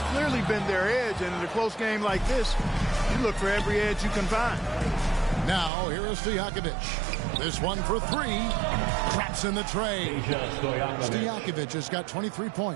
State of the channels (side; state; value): left; drops out; at 5.7 s